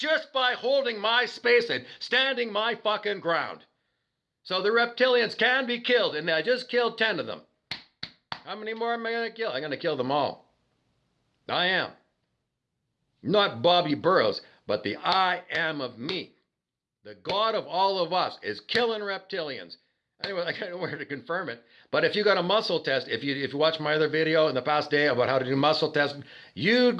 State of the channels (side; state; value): both; identical; correlation 1.00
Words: by holding my space and standing my fucking ground. So the reptilians can be killed, and I just killed 10 of them. How many more am I going to kill? I'm going to kill them all. I am. Not Bobby Burrows, but the I am of me. The God of all of us is killing reptilians. Anyway, I don't know where to confirm it. But if you got a muscle test, if you watch my other video in the past day about how to do muscle testing, you